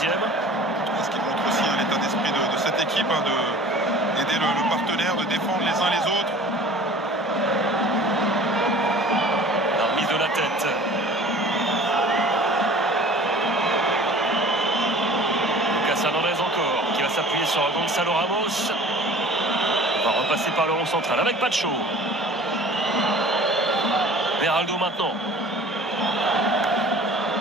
Ce qui montre aussi l'état d'esprit de cette équipe, d'aider le partenaire, de défendre les uns les autres. La remise de la tête. Lucas Hernandez encore, qui va s'appuyer sur Gonzalo Ramos. On va repasser par le rond central avec Pacho. Beraldo maintenant.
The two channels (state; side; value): normal; both; correlation 0.45